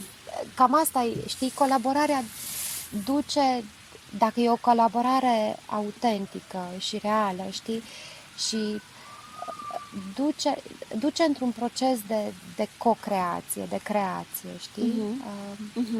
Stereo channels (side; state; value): both; identical; correlation 1.00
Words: Cam asta e, știi, colaborarea duce, dacă e o colaborare autentică și reală, știi, și duce într-un proces de co-creație, de creație, știi?